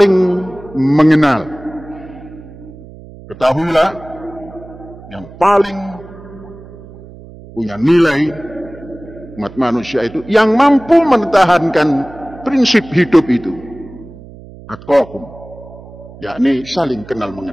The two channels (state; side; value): noise; right; hum, 18 dB below the sound